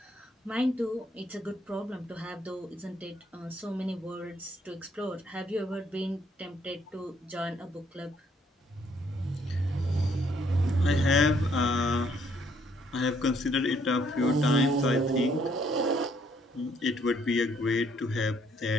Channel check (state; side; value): normal; both; correlation 0.68